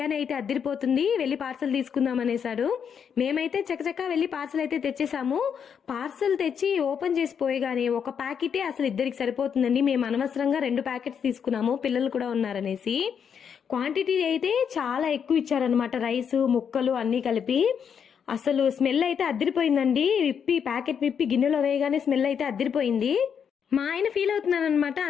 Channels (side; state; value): right; quieter; 7.4 dB